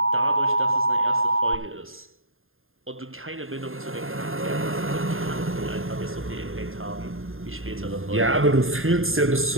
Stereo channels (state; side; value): late; left; 0.60 ms